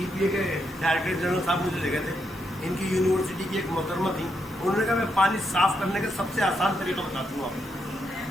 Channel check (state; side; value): normal; both; correlation 0.80